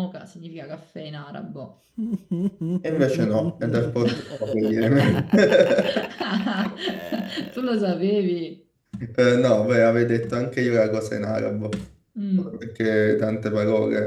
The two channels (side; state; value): both; identical; correlation 1.00